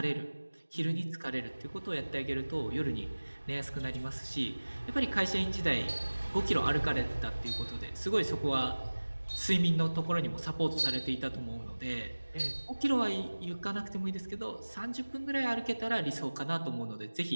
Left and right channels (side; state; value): both; inverted; correlation -1.00